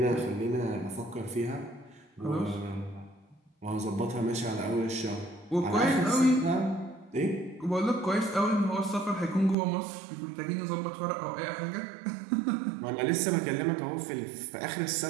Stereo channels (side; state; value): left; drops out; at 9.6 s